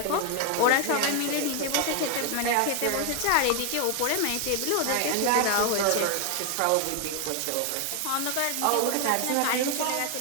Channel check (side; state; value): both; different; correlation 0.01